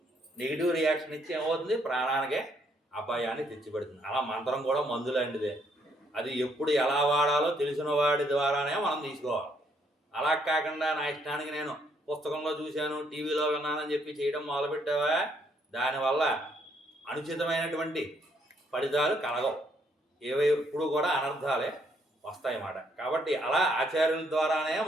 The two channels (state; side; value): normal; both; correlation 0.70